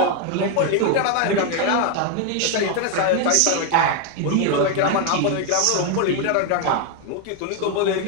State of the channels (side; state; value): both; different; correlation 0.01